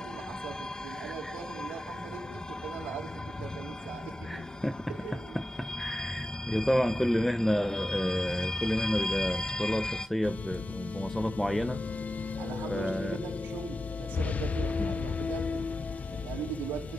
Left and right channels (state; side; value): normal; both; correlation 0.91